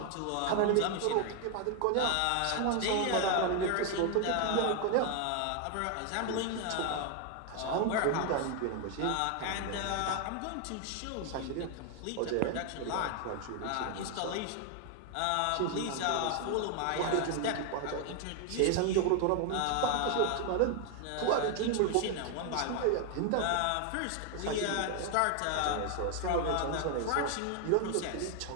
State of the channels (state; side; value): different; both; correlation 0.01